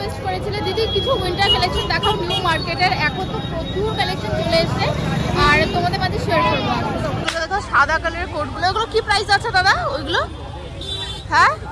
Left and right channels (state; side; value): identical; both; correlation 1.00